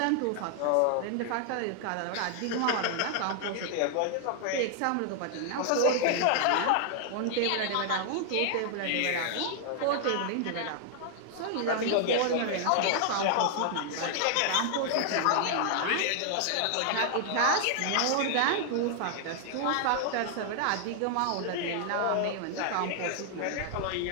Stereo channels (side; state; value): both; different; correlation 0.00